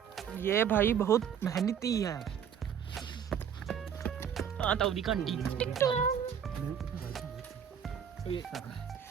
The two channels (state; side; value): quieter; left; 8.2 dB